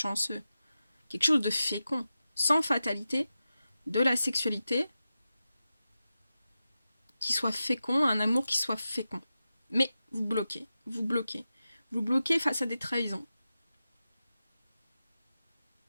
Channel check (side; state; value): both; inverted; correlation -0.92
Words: Quelque chose de fécond, sans fatalité, de la sexualité qui soit fécond, un amour qui soit fécond. Mais vous bloquez, vous bloquez. Vous bloquez face à des trahisons.